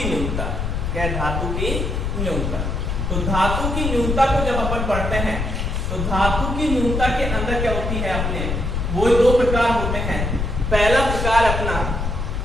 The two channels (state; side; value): noise; left; rumble, 1 dB below the sound